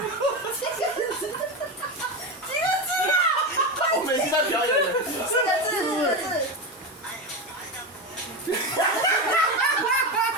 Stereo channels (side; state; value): both; normal; correlation 0.17